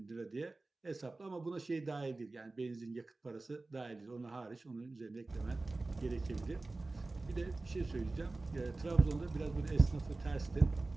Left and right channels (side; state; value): left; quieter; 3.2 dB